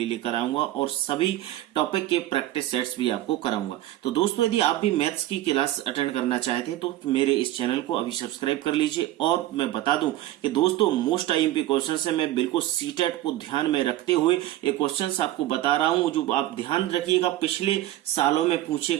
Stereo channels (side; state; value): left; quieter; 14.9 dB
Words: लेकर आऊंगा और सभी टॉपिक के प्रैक्टिस सेट्स भी आपको कराऊंगा। तो दोस्तों यदि आप भी मैथ्स की क्लास अटेंड करना चाहते हैं तो मेरे इस चैनल को अभी सब्सक्राइब कर लीजिए। और मैं बता दूं कि दोस्तों मोस्ट आईएमपी क्वेश्चन से मैं बिल्कुल सीटेट को ध्यान में रखते हुए ये क्वेश्चन आपको बता रहा हूं, जो आप ध्यान रखिएगा पिछले सालों में पूछे